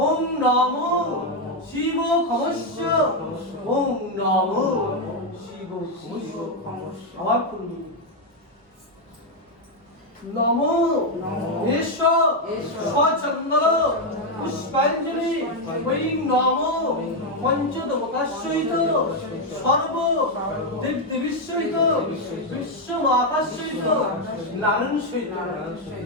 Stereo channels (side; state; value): both; normal; correlation 0.03